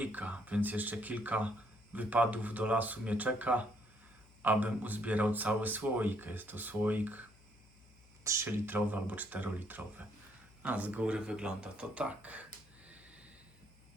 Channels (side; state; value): left; noise; hum, 26 dB below the sound